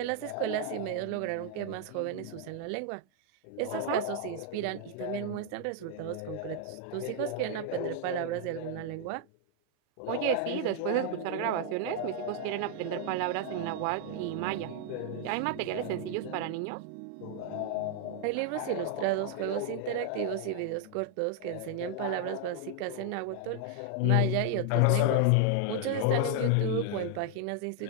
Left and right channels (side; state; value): both; different; correlation 0.00